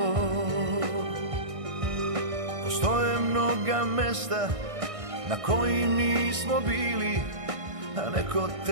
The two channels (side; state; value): left; late; 1.6 ms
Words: Postoje mnoga mesta na kojim nismo bili, a neko